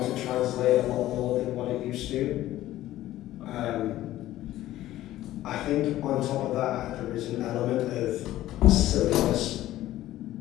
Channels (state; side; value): quieter; right; 14.6 dB